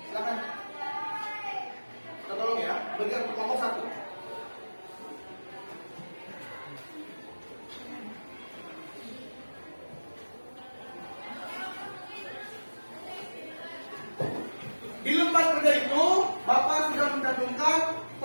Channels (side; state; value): both; inverted; correlation -1.00